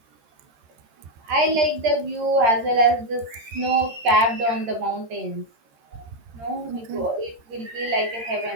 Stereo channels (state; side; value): late; left; 13 ms